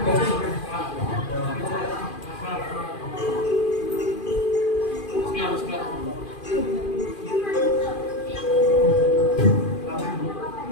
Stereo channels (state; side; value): late; right; 2.4 ms